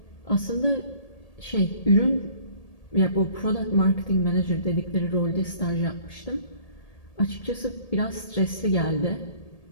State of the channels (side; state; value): right; late; 1.8 ms